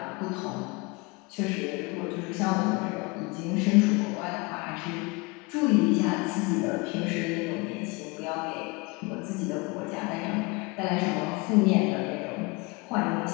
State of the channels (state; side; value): quieter; right; 26.7 dB